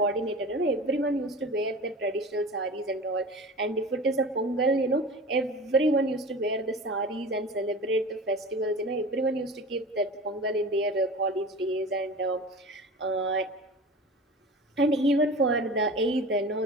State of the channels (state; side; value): normal; both; correlation 0.36